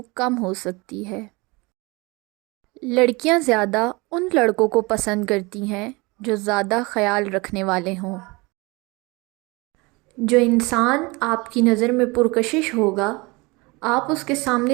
کم ہو سکتی ہے۔ لڑکیاں زیادہ ان لڑکوں کو پسند کرتی ہیں جو زیادہ خیال رکھنے والے ہوں۔ جو انسان آپ کی نظر میں پرکشش ہوگا، آپ اس کے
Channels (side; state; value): left; quieter; 25.3 dB